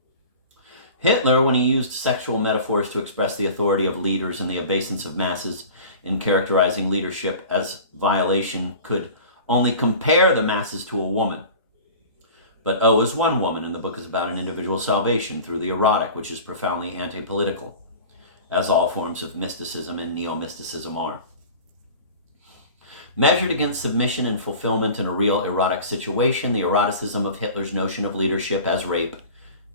Hitler, when he used sexual metaphors to express the authority of leaders and the obeisance of masses in characterizing leadership as violation, could only compare the masses to a woman. But O is one woman, and the book is about an individual's salvation through the erotic, which is profoundly anti-political, as all forms of mysticism and neo-mysticism are. Measured against submission and fulfillment in a real erotic situation, the eroticism of Hitler's notion of leadership as rape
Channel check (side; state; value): both; inverted; correlation -0.39